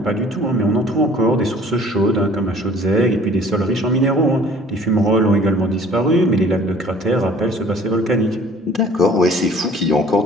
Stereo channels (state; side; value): normal; both; correlation 0.52